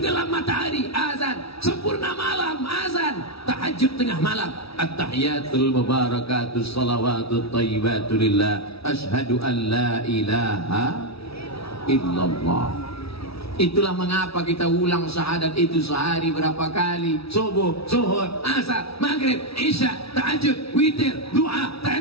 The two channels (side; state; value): right; late; 0.77 ms